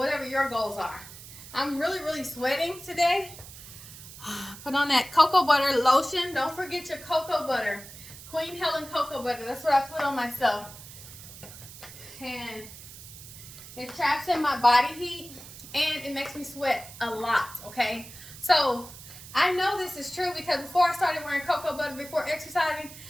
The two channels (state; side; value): noise; right; hiss, 15 dB below the sound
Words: your goals are. I'm really sweating today. Put on that cocoa butter lotion. Don't forget your cocoa butter. Queen Helen cocoa butter. That's what I put on myself. And it traps in my body heat and it makes me sweat a lot, okay? So I know this is true because before I started wearing cocoa butter before exercising,